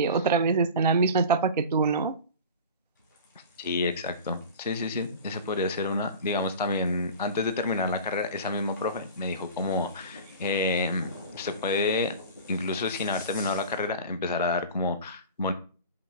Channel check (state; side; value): inverted; both; correlation -0.35